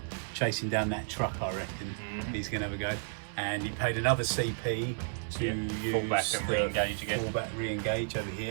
chasing down that truck, I reckon. He's going to have a go. And he paid another CP to use fullback and re-engage again. Fullback re-engage over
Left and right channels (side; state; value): left; silent; digital silence